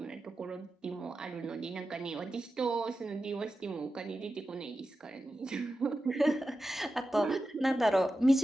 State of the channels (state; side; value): normal; both; correlation 0.92